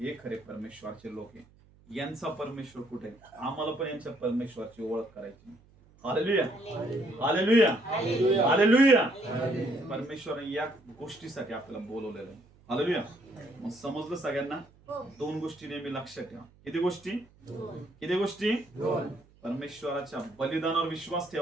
खरे परमेश्वराचे लोक आहे. यांचा परमेश्वर कुठे, आम्हाला पण यांच्या परमेश्वराची ओळख करायची. हालेलुया. हालेलुया. हालेलुया. परमेश्वराने या गोष्टीसाठी आपल्याला बोलवलेलं आहे. हालेलुया. मग समजलं सगळ्यांना. 2 गोष्टी नेहमी लक्षात ठेवा. किती गोष्टी, किती गोष्टी. परमेश्वराच्या बलिदानावर विश्वास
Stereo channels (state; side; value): noise; right; hum, 28 dB below the sound